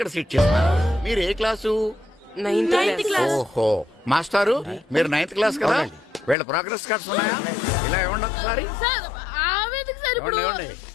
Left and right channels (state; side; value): drops out; right; at 6.4 s